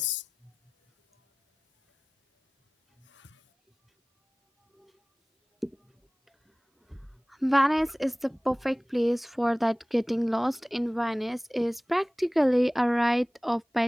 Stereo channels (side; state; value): both; normal; correlation 0.98